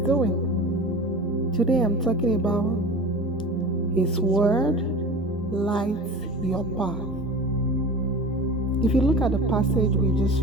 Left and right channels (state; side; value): normal; both; correlation 0.35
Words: Today I'm talking about His word lights your path. If you look at the passage we just